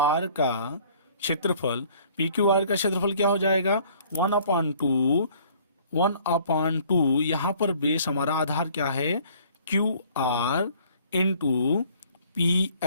का क्षेत्रफल, PQR का क्षेत्रफल क्या हो जाएगा 1/2 यहाँ पर बेस हमारा आधार क्या है QR इंटू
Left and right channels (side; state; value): both; inverted; correlation -0.56